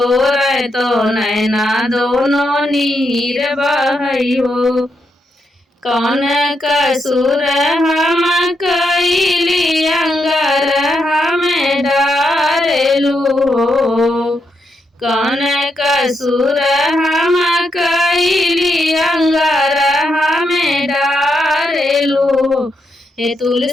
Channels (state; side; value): normal; both; correlation 0.81